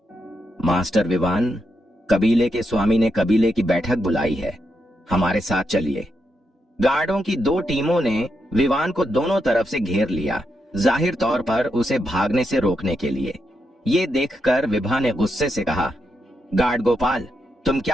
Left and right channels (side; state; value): both; normal; correlation 0.83